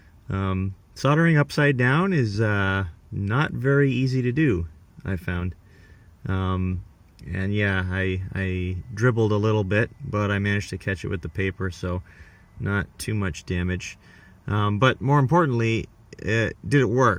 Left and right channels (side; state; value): both; identical; correlation 1.00